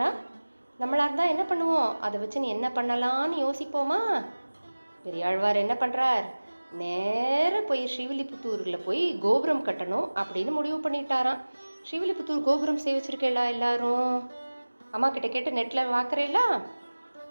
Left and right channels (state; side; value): inverted; both; correlation -1.00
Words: நம்மளாக இருந்தால் என்ன பண்ணுவோம்? அதை வச்சு நீ என்ன பண்ணலான்னு யோசிப்போமா? பெரியாழ்வார் என்ன பண்ணுறார்? நேராக போய் ஸ்ரீவில்லிபுத்தூரில் போய் கோபுரம் கட்டணும் அப்படின்னு முடிவு பண்ணிட்டாராம். ஸ்ரீவில்லிபுத்தூர் கோபுரம் சேவிச்சிருக்கேளா எல்லாரும்? அம்மா கிட்ட கேட்டு நெட்டில் பார்க்குறேங்களா?